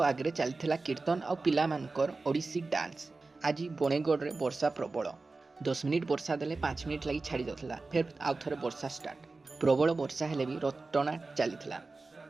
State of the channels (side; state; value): left; quieter; 3.7 dB